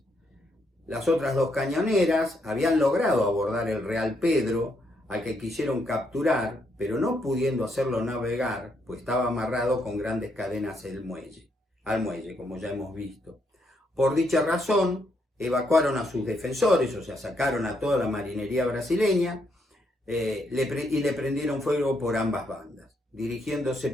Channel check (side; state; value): both; normal; correlation 0.76